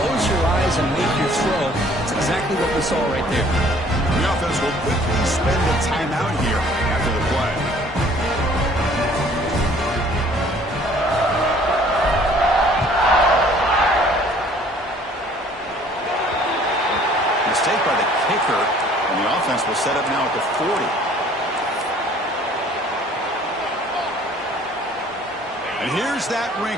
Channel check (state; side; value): normal; both; correlation 0.55